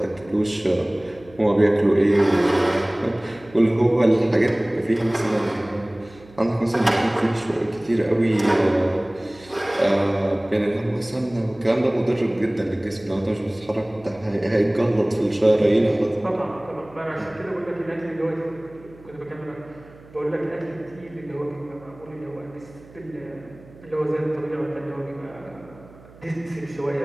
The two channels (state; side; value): noise; right; hum, 23 dB below the sound